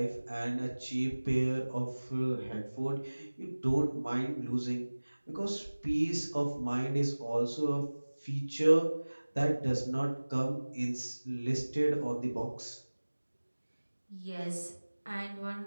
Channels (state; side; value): inverted; both; correlation -1.00